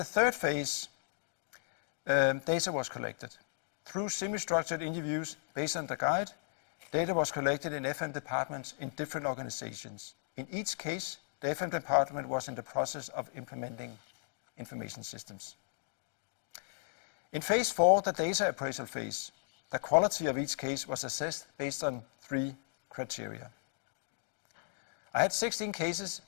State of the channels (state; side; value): silent; right; digital silence